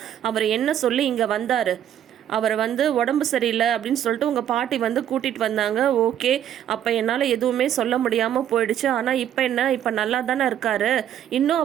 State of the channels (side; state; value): left; quieter; 10.5 dB